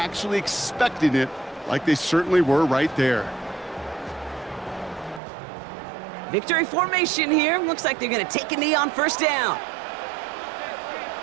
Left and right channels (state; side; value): drops out; left; at 5.2 s